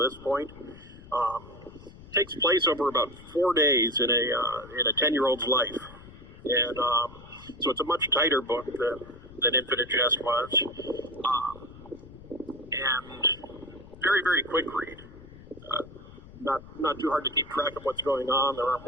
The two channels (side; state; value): left; noise; rumble, 18 dB below the sound